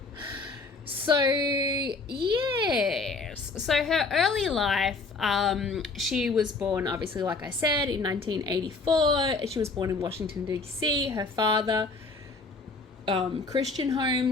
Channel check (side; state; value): right; quieter; 3.8 dB